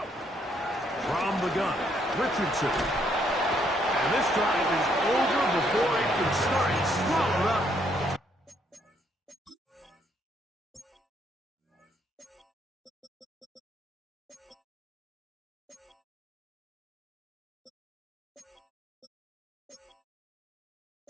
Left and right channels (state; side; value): normal; both; correlation 0.71